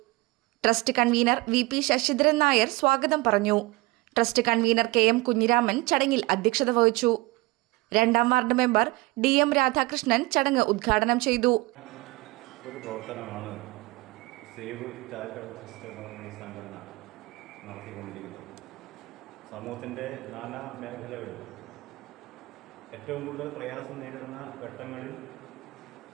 Trust convener VP Sasidharan Nair സ്വാഗതം പറഞ്ഞു. ട്രസ്റ്റ് കൺവീനർ KM കുഞ്ഞിരാമൻ ചടങ്ങിൽ അധ്യക്ഷത വഹിച്ചു. 2ാം വാർഡ് മെമ്പർ DM രാധാകൃഷ്ണൻ ചടങ്ങ് ഉദ്ഘാടനം ചെയ്തു. ഒരു പ്രവർത്തനമാണ് സേവ് ചാരിറ്റബിൾ ട്രസ്റ്റ് എന്ന സംഘടന നടത്തിക്കൊണ്ടിരിക്കുന്നത്. സമൂഹത്തിൻ്റെ നാനാ മേഖലകളിൽ ഏറ്റവും കൂടുതൽ പ്രയാസം നേരിടുന്ന ഘട്ടങ്ങളിൽ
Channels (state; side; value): quieter; left; 22.4 dB